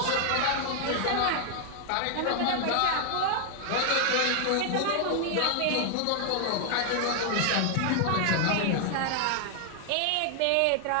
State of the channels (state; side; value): different; both; correlation 0.00